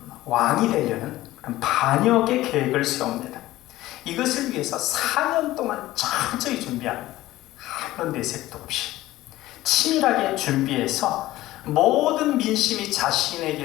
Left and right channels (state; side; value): quieter; right; 16.4 dB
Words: 왕이 되려는 그런 반역의 계획을 세웁니다. 이것을 위해서 4년 동안 철저히 준비합니다. 아무런 내색도 없이 치밀하게 준비해서 모든 민심이